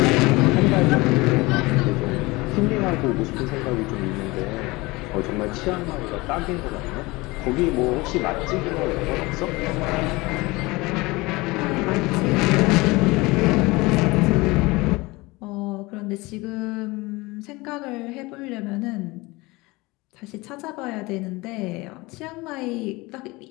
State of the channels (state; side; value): quieter; right; 22.8 dB